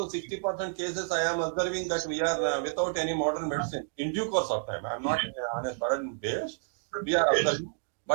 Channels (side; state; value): left; silent; digital silence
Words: 60% cases, I am observing that we are without any modern medicine in due course of time. I am not on a sudden base. We are observing.